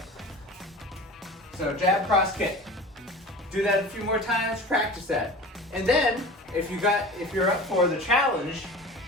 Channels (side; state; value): both; normal; correlation 0.37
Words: So jab, cross, kick. Do that a few more times, practice that. And then, if you're up for the challenge,